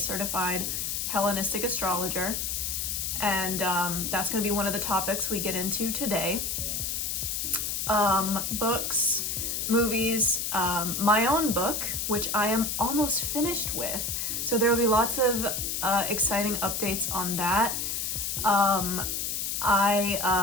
Hellenistic astrologer. And that's going to be one of the topics we get into today. Books, movies, my own book, which I am almost finished with. So there will be lots of exciting updates on that.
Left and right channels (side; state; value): left; noise; hiss, 1 dB below the sound